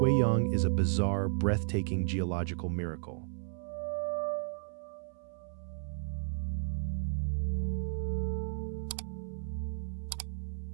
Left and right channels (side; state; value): left; silent; 55 dB below the other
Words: is a bizarre, breathtaking geological miracle.